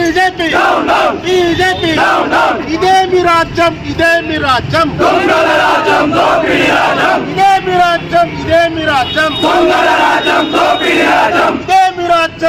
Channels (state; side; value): identical; both; correlation 1.00